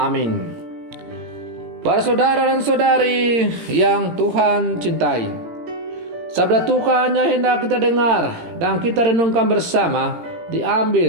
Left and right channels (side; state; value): left; late; 17 ms